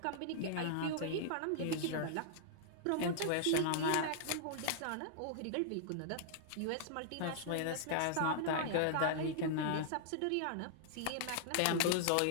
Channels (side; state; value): both; different; correlation -0.01